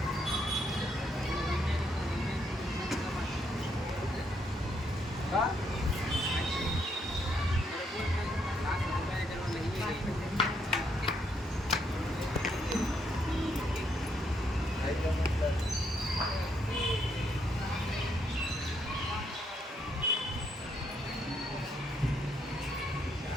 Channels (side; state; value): both; normal; correlation 0.74